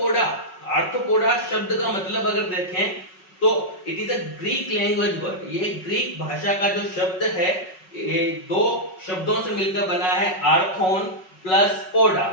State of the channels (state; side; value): late; right; 5.4 ms